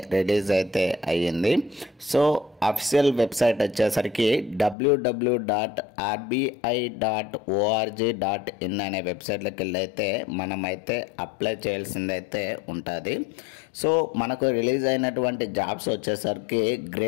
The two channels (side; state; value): right; drops out; at 4.8 s